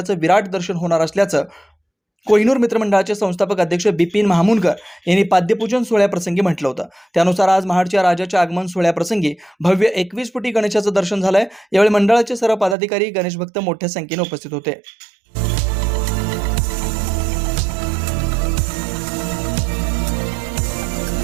विराट दर्शन होणार असल्याचं कोहिनूर मित्रमंडळाचे संस्थापक अध्यक्ष बिपिन महामुनकर यांनी पाद्यपूजन सोहळ्याप्रसंगी म्हटलं होतं. त्यानुसार आज महाडच्या राजाच्या आगमन सोहळ्याप्रसंगी भव्य 21 फुटी गणेशाचं दर्शन झालंय. यावेळी मंडळाचे सर्व पदाधिकारी गणेश भक्त मोठ्या संख्येने उपस्थित होते.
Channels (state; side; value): drops out; left; at 12.8 s